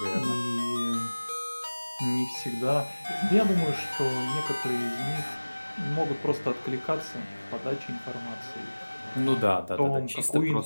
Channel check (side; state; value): both; inverted; correlation -1.00